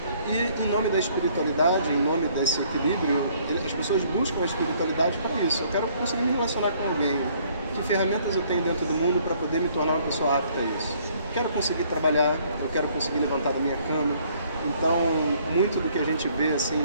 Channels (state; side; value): inverted; both; correlation -0.62